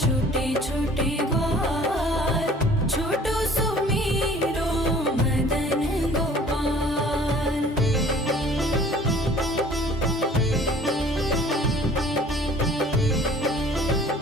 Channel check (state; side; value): normal; both; correlation 0.51